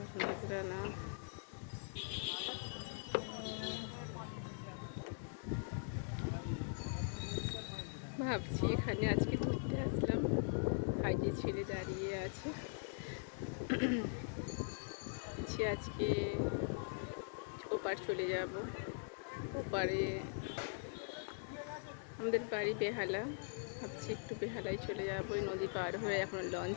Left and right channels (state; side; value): silent; right; digital silence